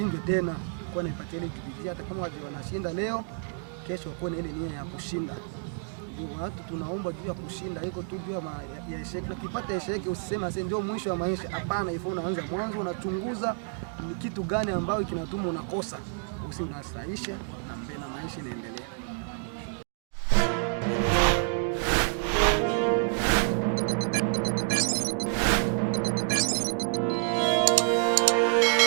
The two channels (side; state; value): left; silent; 56 dB below the other